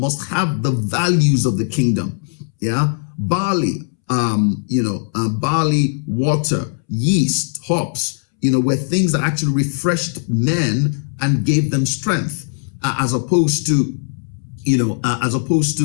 have the values of the kingdom. Yeah, barley, you know, barley, water, yeast, hops, you know, were things that actually refreshed men and gave them strength, as opposed to, you know,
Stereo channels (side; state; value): right; silent; 67 dB below the other